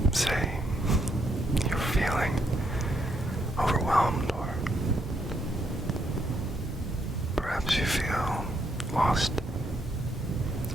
say you're feeling overwhelmed, or perhaps you feel lost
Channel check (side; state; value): both; normal; correlation 0.75